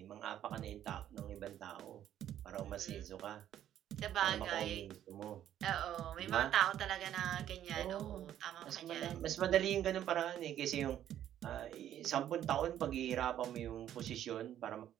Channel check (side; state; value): left; quieter; 11.2 dB